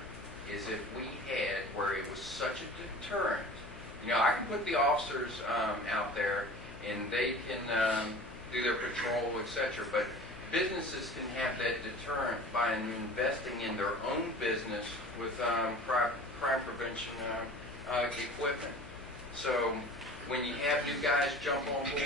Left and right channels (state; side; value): noise; left; hum, 16 dB below the sound